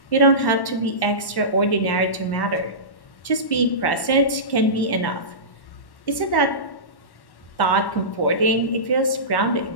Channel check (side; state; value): right; late; 1.1 ms